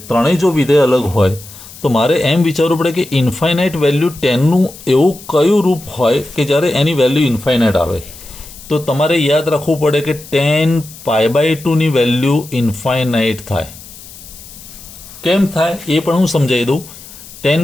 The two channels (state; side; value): noise; left; hiss, 18 dB below the sound